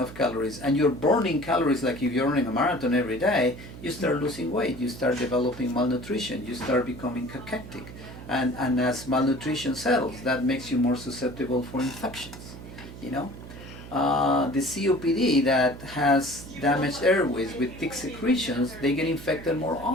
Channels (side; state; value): right; noise; hum, 14 dB below the sound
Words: calories and you're burning calories like if you're running a marathon every day, you start losing weight, you start developing malnutrition, you start becoming cachectic, and as malnutrition settles, that makes you more susceptible for infections. The COPD that has damaged airways with thick secretions, they get infected more